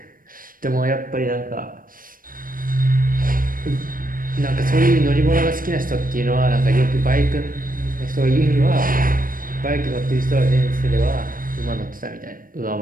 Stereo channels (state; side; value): late; left; 0.41 ms